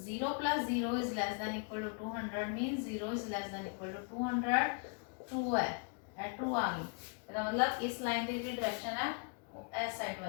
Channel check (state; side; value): quieter; right; 38.8 dB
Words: plus 0 is less than equal to 200 means 0 is less than equal to 200 true है ट्रू आ गई ਇਹਦਾ मतलब इस लाइन की जी डायरेक्शन है वो इस साइड